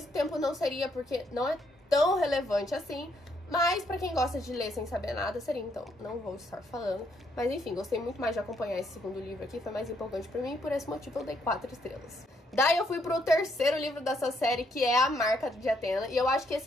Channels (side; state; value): both; normal; correlation 0.73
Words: tempo não seria, porque não é tão relevante assim. Mas pra quem gosta de ler sem saber nada, seria, então não vou estar falando. Mas enfim, gostei muito mais de acompanhar esse segundo livro aqui, foi mais empolgante pra mim, e por esse motivo eu dei 4 estrelas. Daí eu fui pro terceiro livro dessa série, que é A Marca de Atena, e eu acho que